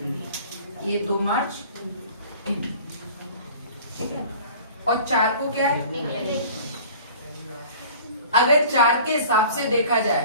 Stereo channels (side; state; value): both; inverted; correlation -0.45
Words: ये 2 मार्च हिंदी। ठीक है, और 4 को क्या है? अगर 4 के हिसाब से देखा जाए